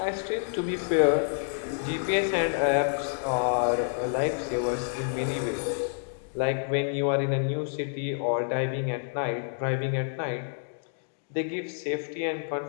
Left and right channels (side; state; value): right; silent; digital silence